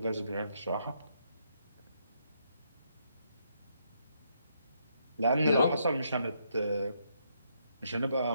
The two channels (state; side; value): inverted; both; correlation -0.75